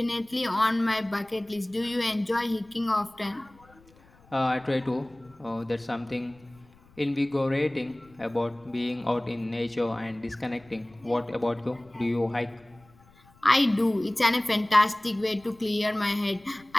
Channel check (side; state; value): left; noise; rumble, 28 dB below the sound